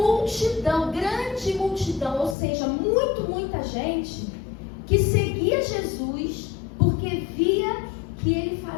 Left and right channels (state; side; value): drops out; right; at 2.4 s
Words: grande multidão, ou seja, muita gente que seguia Jesus porque via que ele